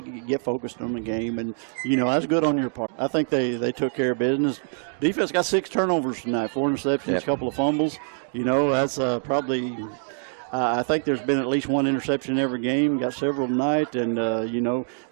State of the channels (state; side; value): silent; left; 62 dB below the other